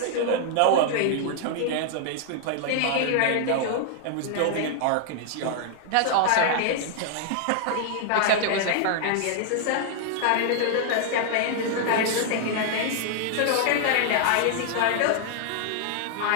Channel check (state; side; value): different; both; correlation -0.01